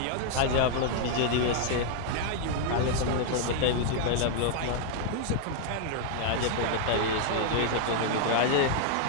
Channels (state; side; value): different; both; correlation 0.00